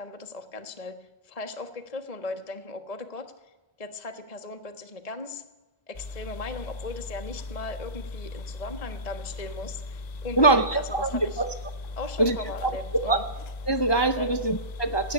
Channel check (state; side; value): late; right; 1.2 ms